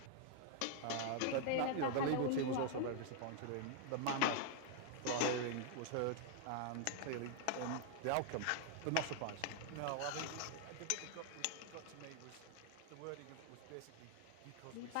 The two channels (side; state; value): both; different; correlation 0.00